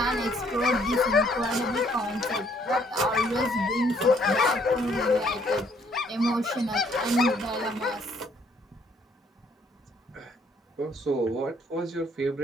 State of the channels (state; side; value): normal; both; correlation 0.65